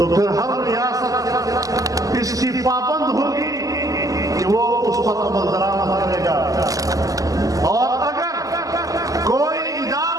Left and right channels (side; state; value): left; late; 0.17 ms